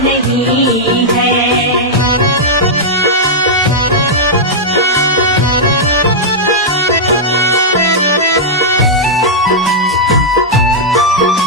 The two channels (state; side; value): normal; both; correlation -0.07